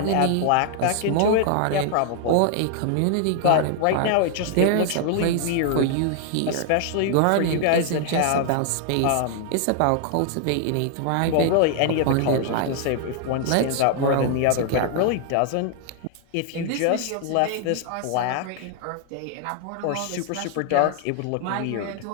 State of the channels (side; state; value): both; different; correlation 0.00